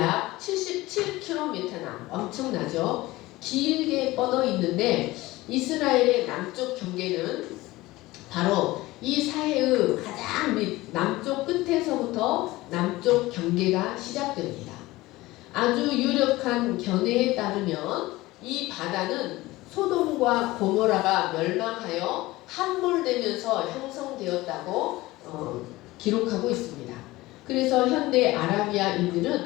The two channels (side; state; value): right; quieter; 19.1 dB